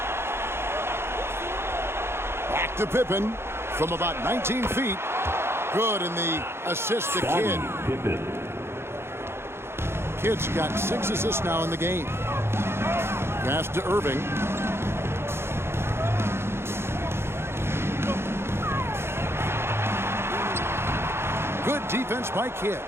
Back to Pippen from about 19 feet. Good, and the assist to Kidd. Kidd's got 6 assists now in the game. Pass to Irving. Good defense by Kidd.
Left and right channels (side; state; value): left; late; 0.12 ms